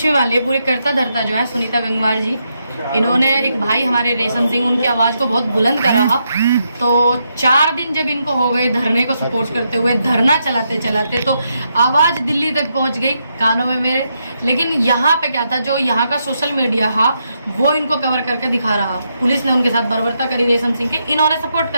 भी मान लीजिए, पूरे करता धरता जो है सुनीता गंगवार जी, इन्होंने एक भाई हमारे रेशम सिंह, उनकी आवाज़ को बहुत बुलंद करा। तो 4 दिन जब इनको हो गए धरने को सपोर्ट करते हुए, धरना चलाते चलाते, तो आवाज़ दिल्ली तक पहुंच गई कानों में मेरे। लेकिन यहाँ पे क्या था, जो यहाँ का सोशल मीडिया था वो इनको कवर करके दिखा रहा। पुलिस ने उनके साथ बर्बरता करी रेशम सिंह के, इन्होंने सपोर्ट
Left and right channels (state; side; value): inverted; both; correlation -0.81